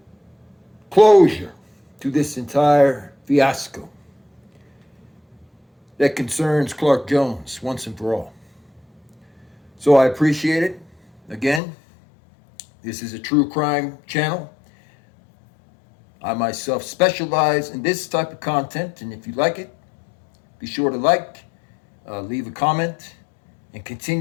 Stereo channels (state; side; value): drops out; right; at 11.6 s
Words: closure to this entire fiasco that concerns Clark Jones once and for all. So I appreciate it. Again, this is a true crime channel. I myself specialize in this type of content, and if you like it, be sure to leave a comment, and